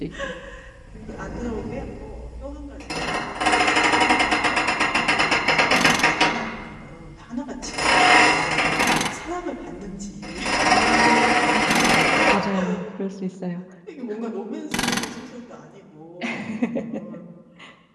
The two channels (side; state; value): both; identical; correlation 1.00